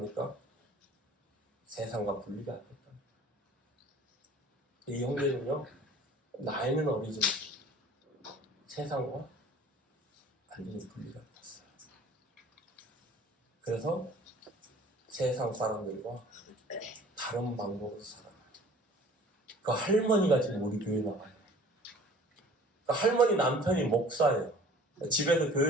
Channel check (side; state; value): both; normal; correlation 0.48